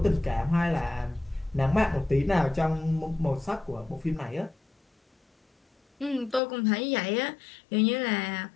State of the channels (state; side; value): drops out; right; at 6.4 s